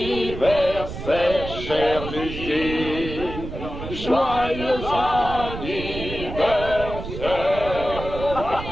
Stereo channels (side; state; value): right; noise; rumble, 8 dB below the sound